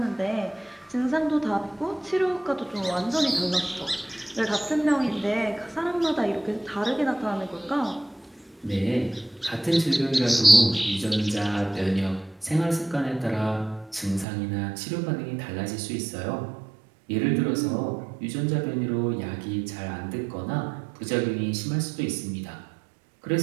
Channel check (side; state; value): left; drops out; at 14.2 s